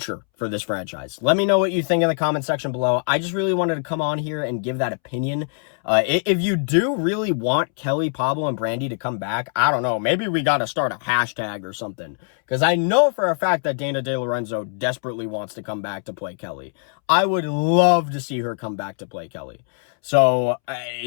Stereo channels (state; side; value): silent; right; 64 dB below the other